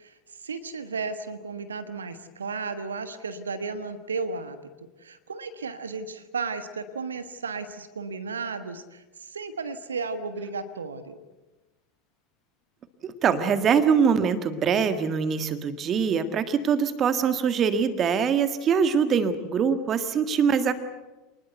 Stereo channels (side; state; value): left; quieter; 6.0 dB